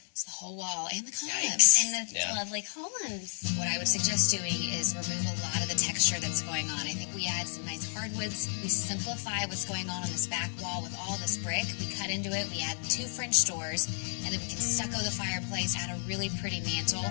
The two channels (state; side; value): silent; right; digital silence